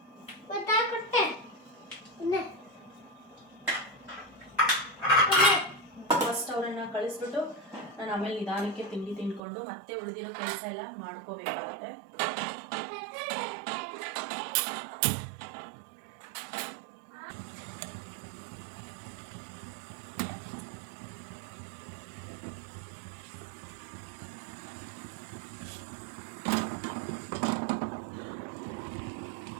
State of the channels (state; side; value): drops out; left; at 9.4 s